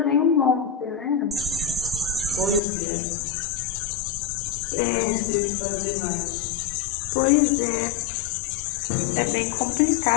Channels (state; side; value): drops out; right; at 2.6 s